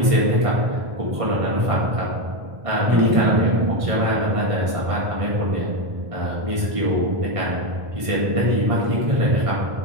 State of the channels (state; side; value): late; left; 1.5 ms